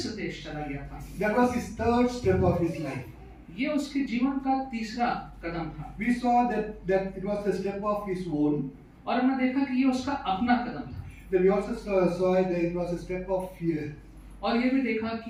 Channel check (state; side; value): identical; both; correlation 1.00